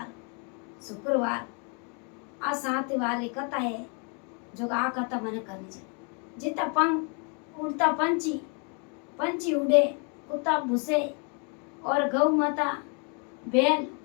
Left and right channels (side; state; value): right; quieter; 37.1 dB